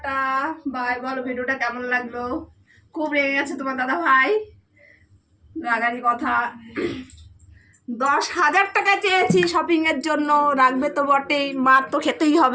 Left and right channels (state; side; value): identical; both; correlation 1.00